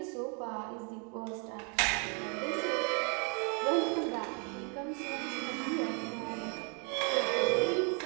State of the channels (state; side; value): quieter; left; 36.9 dB